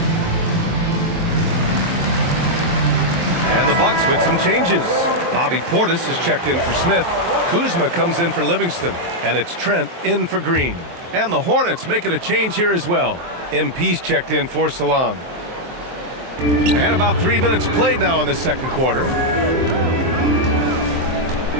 Bucks with some changes. Bobby Portis is checked in for Smith. Kuzma comes in for Livingston. And it's Trent in for Green. And the Hornets making a change here as well. MP's checked in for Salon. And about 3 minutes played now in the second quarter.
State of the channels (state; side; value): late; left; 23 ms